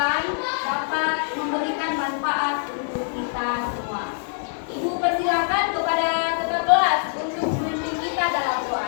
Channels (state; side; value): silent; right; 63 dB below the other